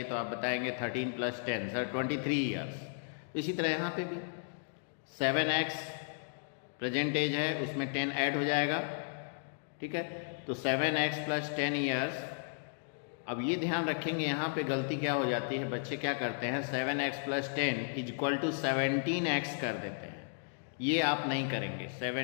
तो आप बताएंगे 13 + 10 सर 23 years. इसी तरह यहाँ पे भी 7x प्रेजेंट एज है, उसमें 10 ऐड हो जाएगा. ठीक है, तो 7x + 10 years. अब ये ध्यान रखेंगे यहाँ पे गलती क्या हो जाती है, बच्चे क्या करते हैं 7x + 10 = 17x कर देते हैं. ये आप नहीं करेंगे,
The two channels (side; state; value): right; silent; digital silence